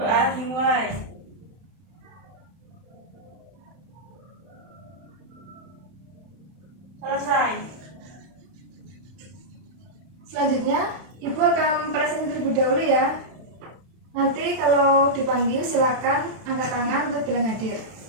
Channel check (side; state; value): left; late; 31 ms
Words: dimulai. Selesai. Selanjutnya, Ibu akan presentasi terlebih dahulu ya. Nanti kalau dipanggil silakan angkat tangan untuk bilang hadir.